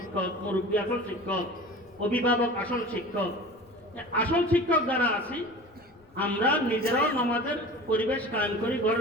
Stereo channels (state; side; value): noise; left; rumble, 30 dB below the sound